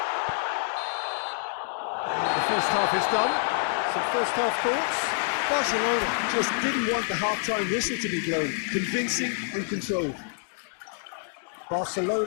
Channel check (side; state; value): right; silent; digital silence